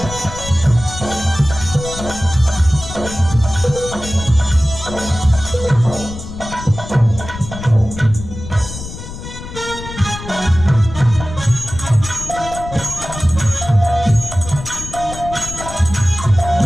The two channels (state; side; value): noise; left; rumble, 11 dB below the sound